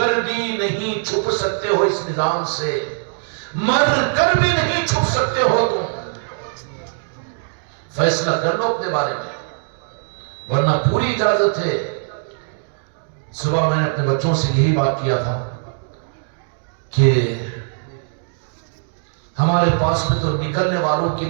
بھی نہیں چھپ سکتے ہو اس نظام سے, مر کر بھی نہیں چھپ سکتے ہو. تم فیصلہ کر لو اپنے بارے میں, ورنہ پوری اجازت ہے. صبح میں نے اپنے بچوں سے یہی بات کیا تھا کہ ہمارے پاس میں تو نکلنے والوں کے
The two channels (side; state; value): left; silent; digital silence